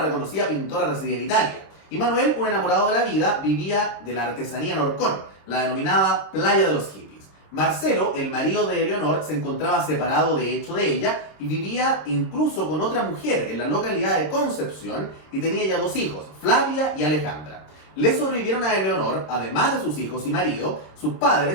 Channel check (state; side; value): late; right; 27 ms